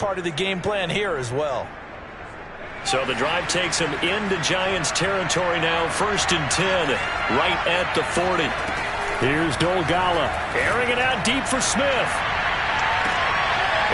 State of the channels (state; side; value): identical; both; correlation 1.00